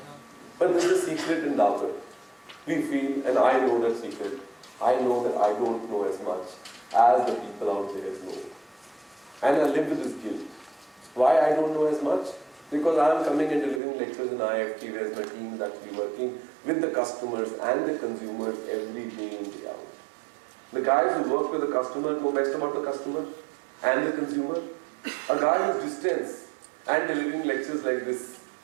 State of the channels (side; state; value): left; drops out; at 13.8 s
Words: But this is a secret in Dabur. We feel, and I know that secret, I know that I don't know as much as the people out there know. And I live with this guilt. Why I don't know as much? Because I am coming and delivering lectures in IIFT, whereas my team is actually working with the customers and the consumers every day in, day out. The guys who work with the customer know best about the customer and the consumer. A guy who's distance and delivering lectures like this,